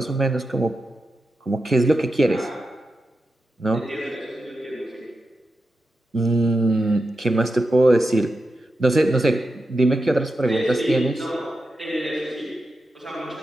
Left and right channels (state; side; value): normal; both; correlation 0.89